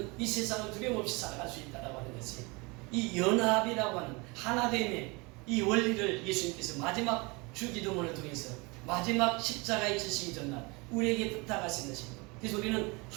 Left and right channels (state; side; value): quieter; left; 27.2 dB